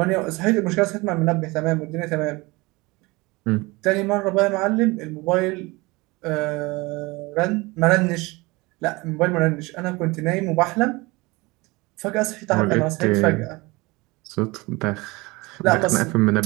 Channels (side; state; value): left; quieter; 23.6 dB